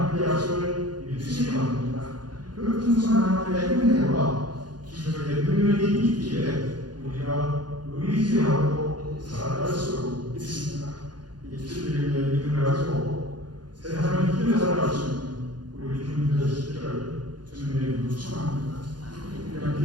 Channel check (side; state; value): left; late; 0.70 ms